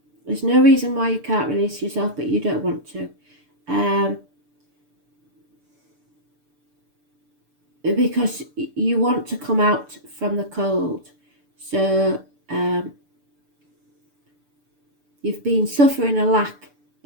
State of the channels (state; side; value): late; left; 6.8 ms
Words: There's no reason why you can't release yourself, but you don't want to. Because you want to come out from the cold. So you've been suffering a lack